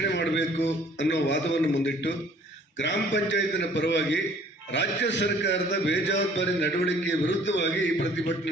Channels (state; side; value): normal; both; correlation 0.56